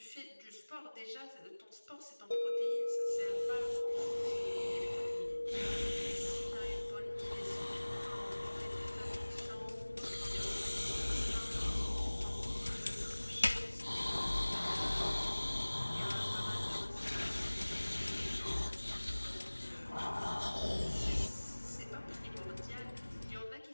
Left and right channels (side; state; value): both; inverted; correlation -1.00